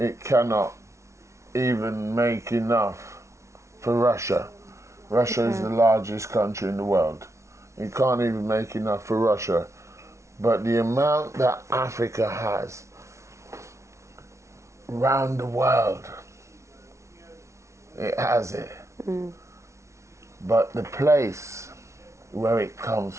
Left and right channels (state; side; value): late; left; 0.14 ms